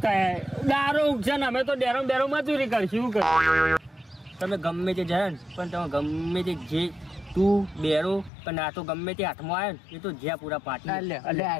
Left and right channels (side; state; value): right; drops out; at 8.3 s